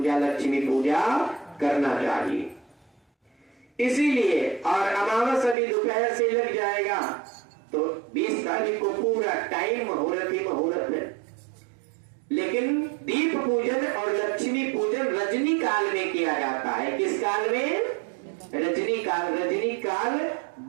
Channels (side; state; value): left; drops out; at 5.6 s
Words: लक्ष्मी पूजा करना चाहिए। इसीलिए और अमावस अभी दोपहर से लग जाएगा तो 20 तारीख को पूरा टाइम मुहूर्त ही मुहूर्त है। लेकिन दीप पूजन और लक्ष्मी पूजन रजनी काल में किया जाता है। किस काल में? रजनी काल। रजनी काल